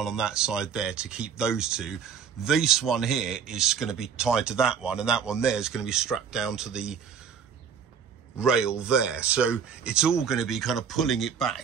on that side there to keep those two. This one here is going to be tied to that one, and that one there is going to be strapped down to the rail there. So it's all going to be kind of pulling it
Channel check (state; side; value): quieter; left; 7.1 dB